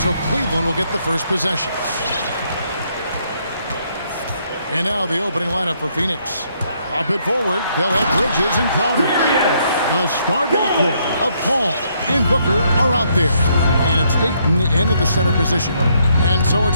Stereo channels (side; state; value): both; inverted; correlation -0.72